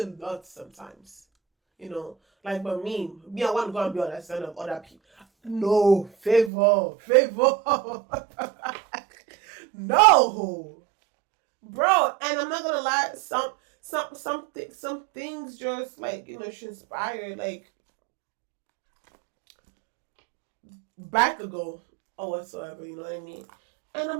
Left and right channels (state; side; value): drops out; left; at 6.5 s